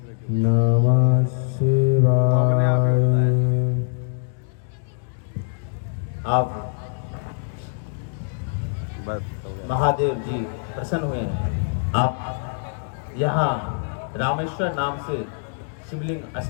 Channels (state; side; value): silent; right; digital silence